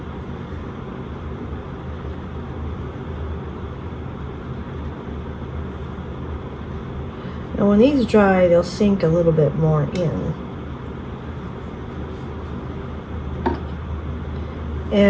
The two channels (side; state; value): both; identical; correlation 1.00